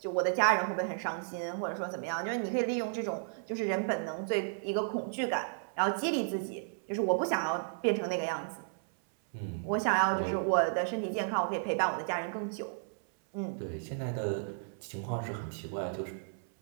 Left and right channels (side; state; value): left; silent; 56 dB below the other